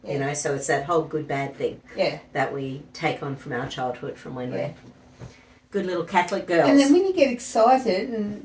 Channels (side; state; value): both; identical; correlation 1.00